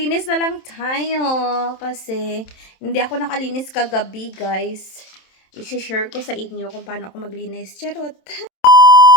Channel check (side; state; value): right; late; 27 ms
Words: na lang tayo kasi hindi ako nakalinis kagabi guys. I-share ko sa inyo kung paano ako maglinis. Charot!